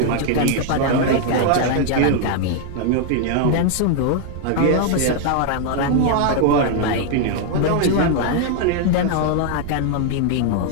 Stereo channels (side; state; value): both; different; correlation 0.00